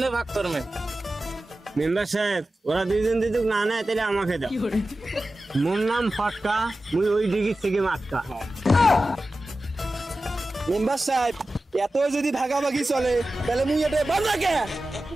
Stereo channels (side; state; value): both; normal; correlation 0.94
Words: ভাগ করবেন? মেম্বার সাহেব ওরা দুইজন যদি না নেয় তাহলে আমাকে দাও। মোর নাম ফটকা, মুই ওই ডিগির থেকে মাটকা। মেম্বার সাহেব এত যদি ভাগাভাগি চলে তাহলে মুই এটা বন্ধ রাখে।